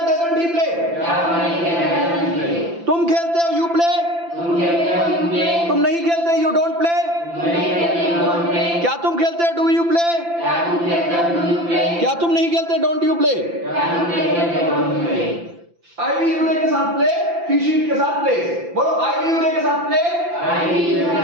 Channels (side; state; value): left; late; 5.9 ms